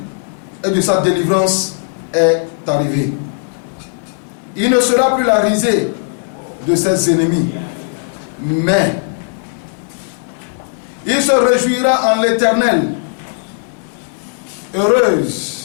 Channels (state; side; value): silent; right; digital silence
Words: et de sa délivrance est arrivée. Il ne sera plus la risée de ses ennemis, mais il se réjouira en l'Éternel.